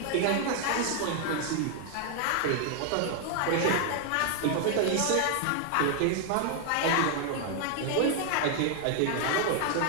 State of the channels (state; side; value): different; both; correlation 0.00